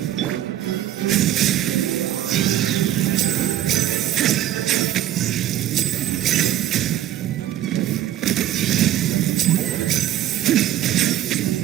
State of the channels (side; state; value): left; quieter; 12.5 dB